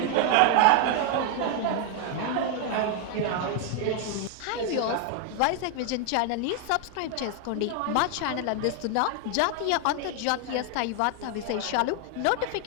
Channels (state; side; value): different; both; correlation 0.01